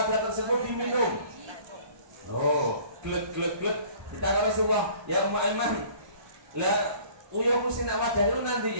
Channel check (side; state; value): left; late; 1.2 ms